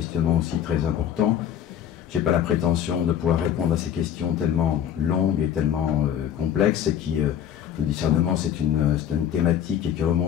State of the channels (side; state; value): right; quieter; 9.6 dB